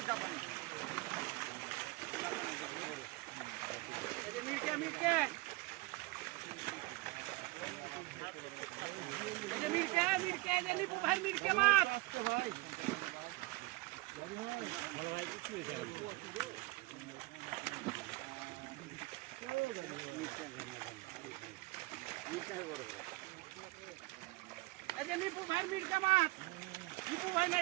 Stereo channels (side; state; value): left; quieter; 22.1 dB